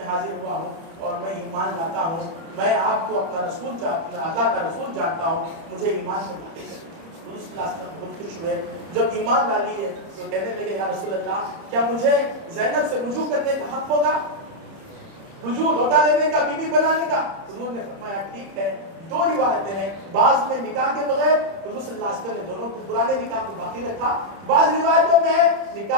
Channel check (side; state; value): left; late; 30 ms